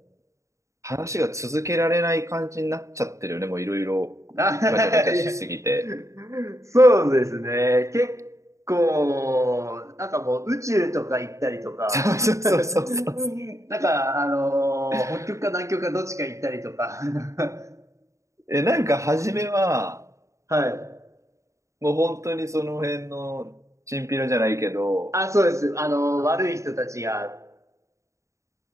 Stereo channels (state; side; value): late; left; 0.15 ms